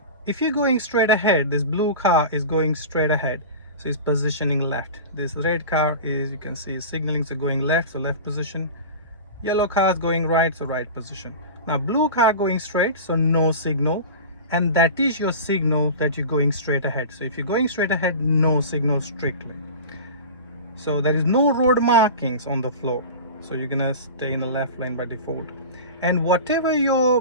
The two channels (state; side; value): inverted; both; correlation -0.31